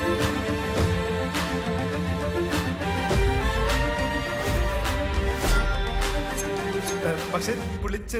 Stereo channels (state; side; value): identical; both; correlation 1.00